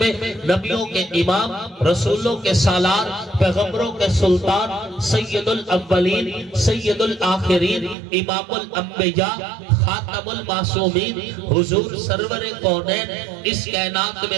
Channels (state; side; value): drops out; left; at 8.0 s